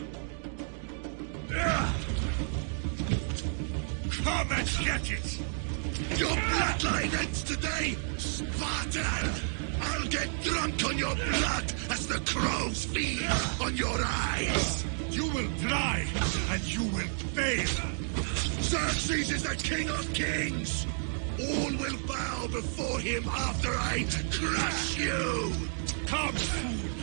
Come and get it! Your bloodline ends today, Spartan! I'll get drunk on your blood as the crows feed on your eyes! You will die, and you will fail! Xerxes is the king of kings! All will bow before him after I crush you! Come,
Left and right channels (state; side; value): silent; left; digital silence